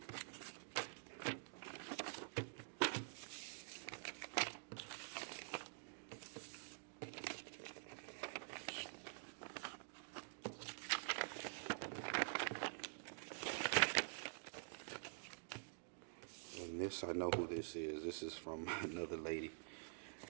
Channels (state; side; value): silent; left; digital silence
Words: And this, I know who this is. This is from another lady.